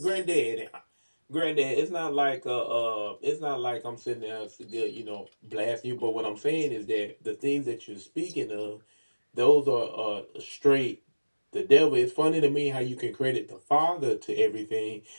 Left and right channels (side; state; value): both; inverted; correlation -1.00